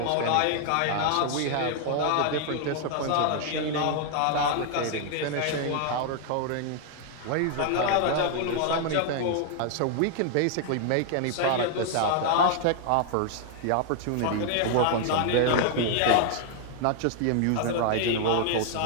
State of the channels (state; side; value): different; both; correlation 0.00